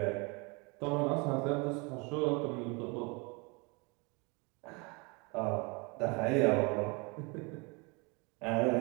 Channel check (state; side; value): quieter; left; 29.6 dB